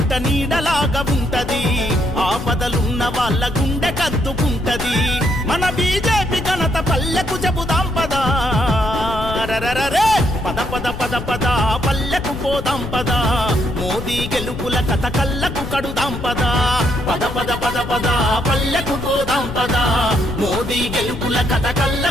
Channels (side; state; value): left; noise; rumble, 8 dB below the sound